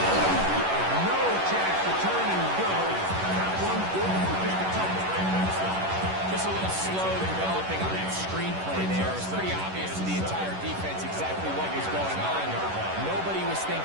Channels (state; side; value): late; left; 11 ms